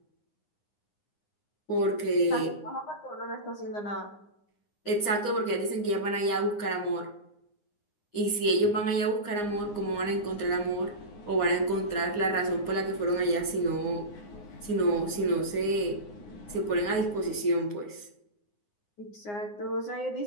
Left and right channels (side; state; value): right; late; 9.7 ms